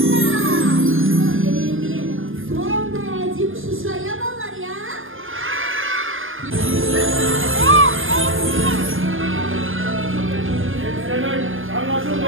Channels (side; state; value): left; late; 0.59 ms